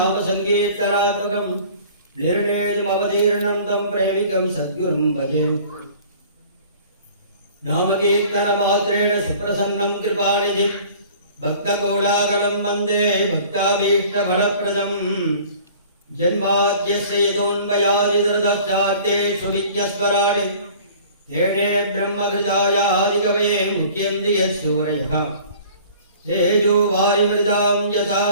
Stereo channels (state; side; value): inverted; both; correlation -0.48